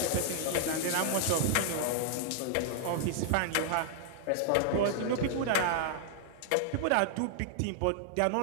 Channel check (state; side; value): different; both; correlation -0.01